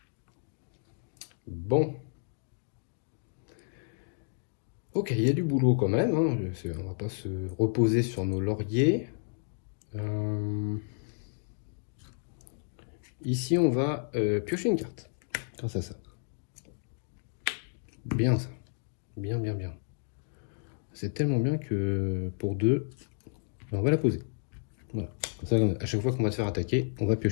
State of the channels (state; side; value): silent; right; digital silence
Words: Bon. Ok, il y a du boulot quand même. Hein. On va pas se reposer sur nos lauriers. Ici, on va piocher une carte. Grâce à ça. Bien ça. Bien, bien, bien. C'est tellement bien que pour 2, on va la poser. Voilà. Comme ça, à chaque fois qu'on va se faire attaquer, on va